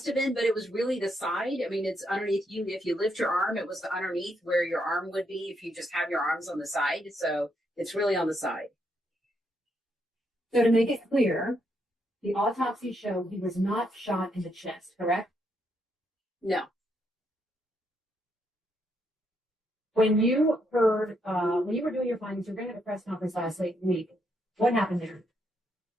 have been, but it was really the side. I mean, it's underneath you. If you lift your arm, it was the underneath where your arm would be if you just have your arms on the side. So it's really on the side. So to make it clear, the autopsy showed he was not shot in the chest, correct? No. When you heard, when you were doing your findings, you were going to have a press conference last week. What happened there?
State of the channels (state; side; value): normal; both; correlation 0.77